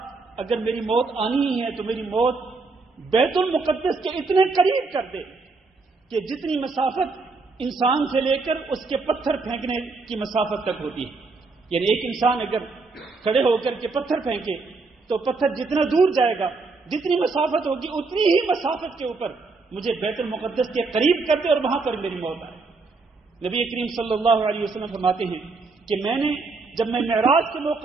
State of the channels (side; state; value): left; quieter; 4.0 dB